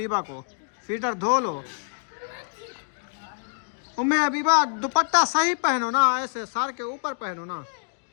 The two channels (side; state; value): right; silent; digital silence